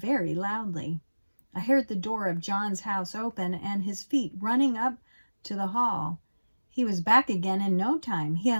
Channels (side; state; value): both; inverted; correlation -1.00